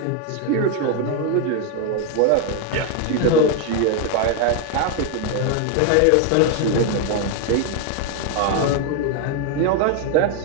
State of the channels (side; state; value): both; different; correlation 0.01